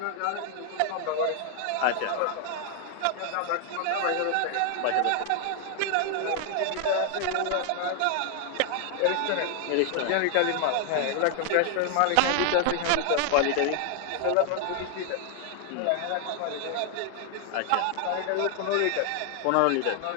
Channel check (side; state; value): both; different; correlation 0.00